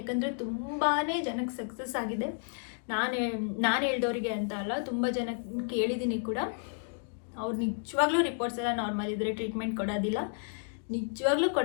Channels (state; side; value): silent; right; digital silence